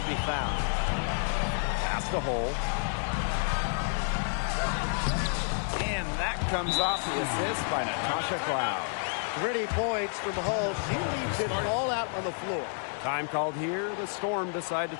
be found. Pass to Hull. And that comes off the assist by Natasha Cloud. Pretty points from Hull. She leaves it all out on the floor. Time called here. The Storm decide to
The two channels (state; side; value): silent; right; 58 dB below the other